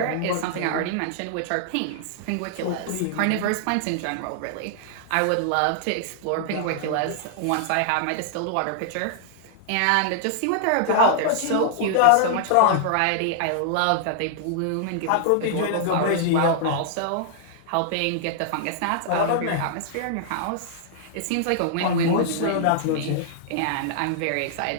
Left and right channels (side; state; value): both; different; correlation -0.01